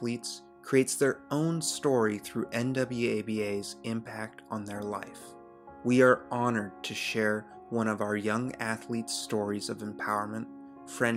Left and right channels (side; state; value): both; identical; correlation 1.00